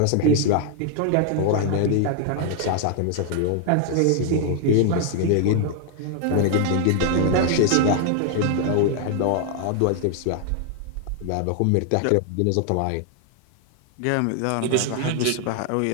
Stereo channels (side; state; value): both; different; correlation 0.00